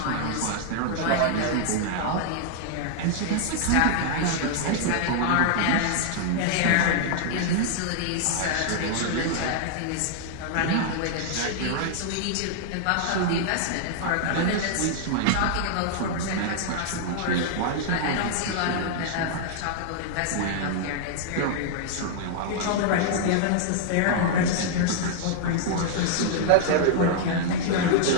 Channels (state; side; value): different; both; correlation -0.01